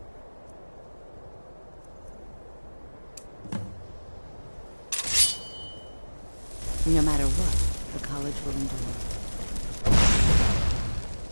No matter what, the college will endure.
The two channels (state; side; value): inverted; both; correlation -1.00